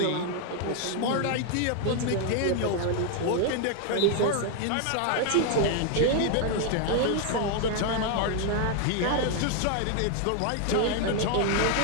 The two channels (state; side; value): different; both; correlation 0.00